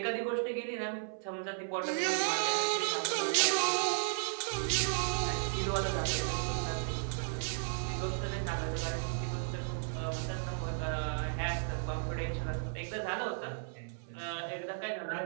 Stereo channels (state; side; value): silent; left; 55 dB below the other